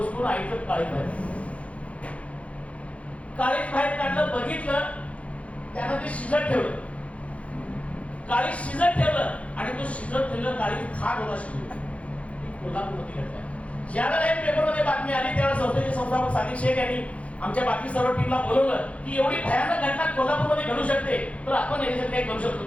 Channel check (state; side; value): late; right; 0.064 ms